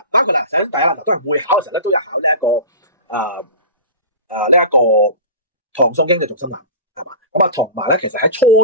包括啦，首先第一啦，嗱都係會考嘅時候咧都有考呢一個唐宋經濟重心論。咁啊，同埋咧，其實喺初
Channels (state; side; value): inverted; both; correlation -0.32